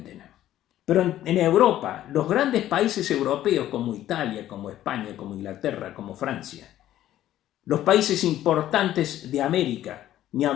Pero en Europa, los grandes países europeos como Italia, como España, como Inglaterra, como Francia, los países importantes de América, ni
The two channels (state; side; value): quieter; right; 13.0 dB